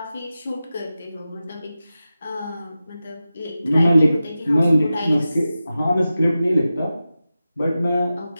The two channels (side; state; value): both; inverted; correlation -0.93